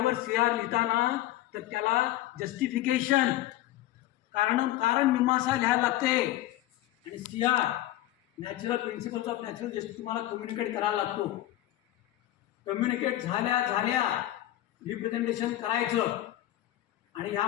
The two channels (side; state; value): right; quieter; 15.0 dB